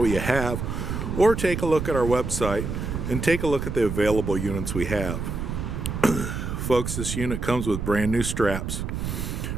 you have, or take a look at our website and take a look at the available units we have. Folks, this unit comes with brand new straps,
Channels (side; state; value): right; noise; rumble, 4 dB below the sound